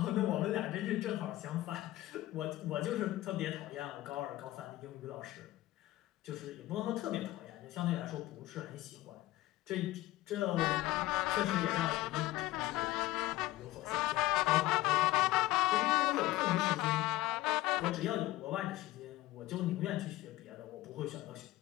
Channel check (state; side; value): quieter; right; 16.8 dB